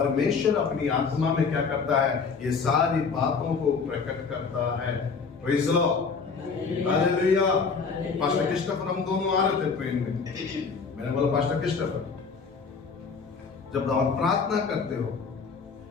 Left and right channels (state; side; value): quieter; right; 5.2 dB